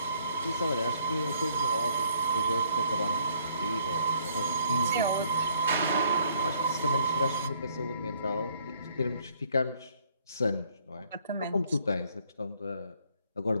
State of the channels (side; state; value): both; inverted; correlation -0.63